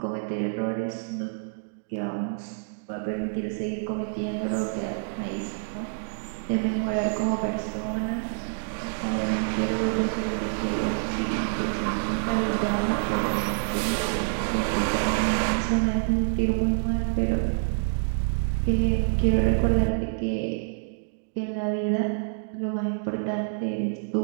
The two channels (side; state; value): left; silent; digital silence